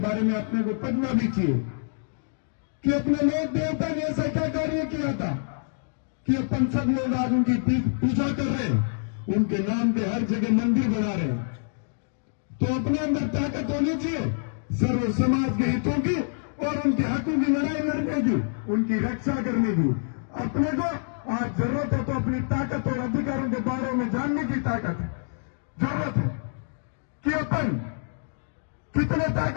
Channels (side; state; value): right; silent; digital silence